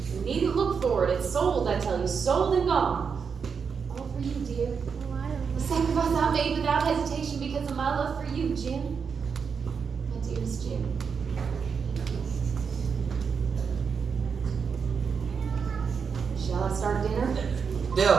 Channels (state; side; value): quieter; left; 6.1 dB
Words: You needn't look for it. It's sold, I tell you. Sold and gone. All for you, dear. A sacrifice I made without hesitation because of my love for you, Jim. My dearest Jim. Shall I start dinner?